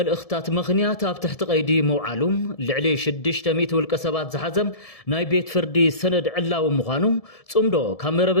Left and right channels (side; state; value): right; late; 1.7 ms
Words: ምኽንያት ኣብ ትሕቲ ቀይዲ መውዓሉም ልዕሊ 600 ውልቀ ሰባት ዝሓዘም ናይ ቤት ፍርዲ ሰነድ ዕላው ምዃኑ ጽምዶ